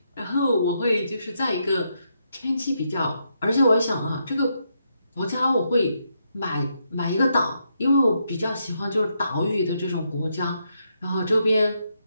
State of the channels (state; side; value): inverted; both; correlation -0.79